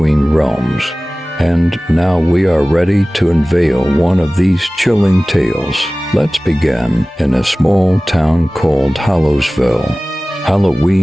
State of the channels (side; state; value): both; normal; correlation 0.98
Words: realms. And now we are ready to unveil one of these chilling tales. Let's begin in a small town called Hallowsville.